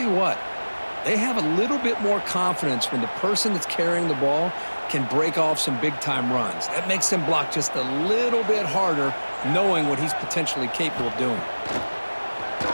you what, they have a little bit more confidence when the person that's carrying the ball can break off some big-time runs. That makes them block just a little bit harder, knowing what he's potentially capable of doing.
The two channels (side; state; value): both; inverted; correlation -1.00